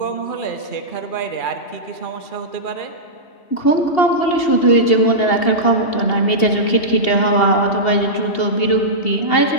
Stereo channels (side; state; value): right; late; 2.7 ms